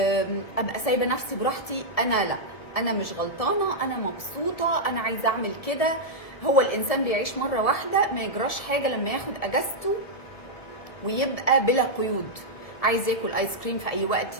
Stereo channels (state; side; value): late; right; 1.7 ms